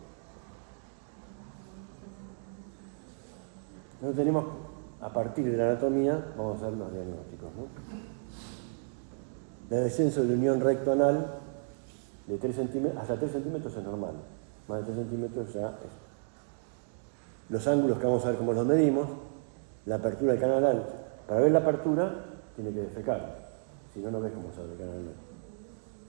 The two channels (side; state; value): left; silent; digital silence